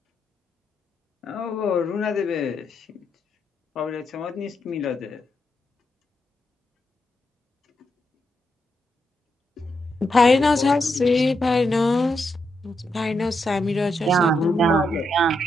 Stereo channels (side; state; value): both; normal; correlation 0.82